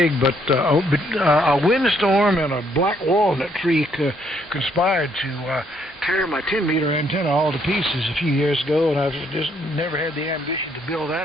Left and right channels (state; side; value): normal; both; correlation 0.69